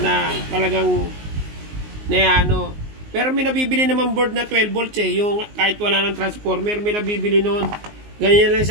talagang ano. Pero may nabibili naman board na 12 volts eh, yung kahit wala ng transformer, may nabibili noon. Ganyan lang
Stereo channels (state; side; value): late; left; 19 ms